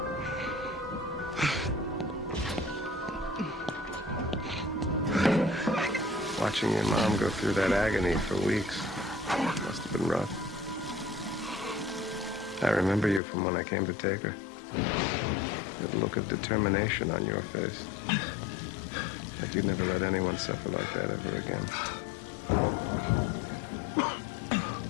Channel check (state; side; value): drops out; right; at 13.2 s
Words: Watching your mom go through that agony for weeks must have been rough. I remember you from when I came to take her. That look of determination on your face. Like you'd never let anyone suffer like that ever again.